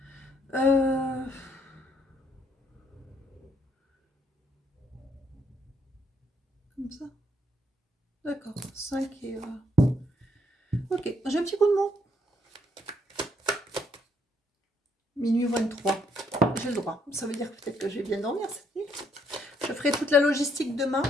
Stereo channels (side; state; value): both; normal; correlation 0.71